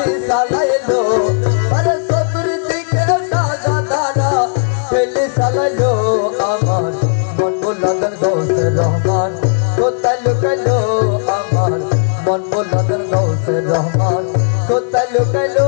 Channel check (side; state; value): right; silent; digital silence